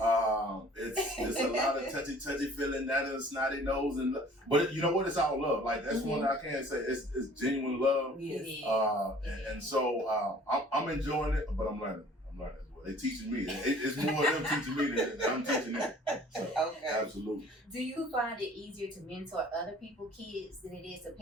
a lot of touchy feeling, that and snotty nose, but you know what? It's all love. Like that's one I can't say. It's genuine love. Yes. And so I'm enjoying it, but I'm learning. as well. They teaching me. It's more of them teaching me than I'm teaching them. So, absolutely. Do you find it easier to mentor other people's kids than it is to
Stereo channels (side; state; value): both; normal; correlation 0.51